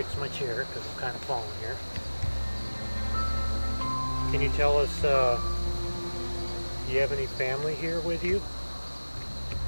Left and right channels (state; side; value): inverted; both; correlation -1.00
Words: my chair because I'm kind of falling here. Can you tell us, do you have any family here with you?